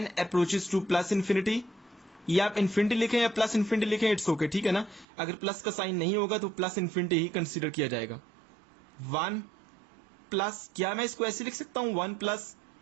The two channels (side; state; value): left; drops out; at 5.1 s